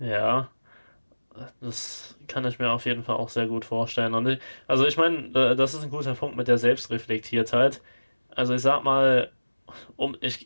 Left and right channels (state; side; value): inverted; both; correlation -1.00